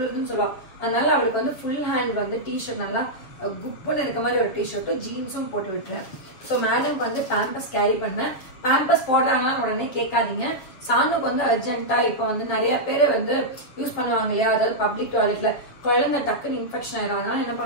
சொல்லுவா. அதனால அவளுக்கு ஃபுல் ஹேண்ட் டிஷர்ட் நல்லா குப்புன்னு இருக்க மாதிரி ஒரு டிஷர்ட்டும் ஜீன்ஸும் போட்டு விட்டுறேன். ஸோ மேடம்க்கு பேம்பஸ் கேரி பண்ணேன். பேம்பஸ் போடுறாங்களா உடனே கேட்காதீங்க. சாணுக்கு அர்ஜென்ட்டா இப்போ நிறைய பேர் யூஸ் பண்ணுவாங்க இல்லையா, அதாவது பப்ளிக் டாய்லெட்ல குழந்தை டக்குன்னு இன்ஃபெக்ஷன் ஆயிடும். அதனால என்ன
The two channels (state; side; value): late; right; 7.2 ms